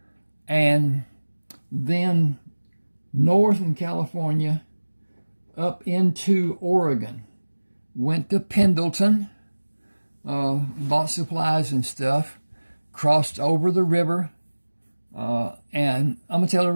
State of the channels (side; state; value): both; inverted; correlation -1.00